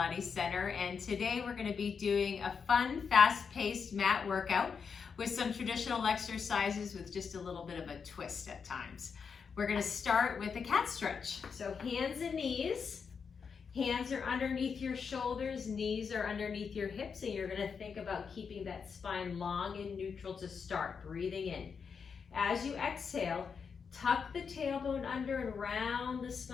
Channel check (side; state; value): right; quieter; 6.0 dB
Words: Center, and today we're going to be doing a fun, fast-paced mat workout with some traditional exercises with just a little bit of a twist at times. We're going to start with a cat stretch. So hands and knees. Hands are underneath your shoulders, knees are underneath your hips, and you're going to think about keeping that spine long and neutral to start, breathing in. As you exhale, tuck the tailbone under and round the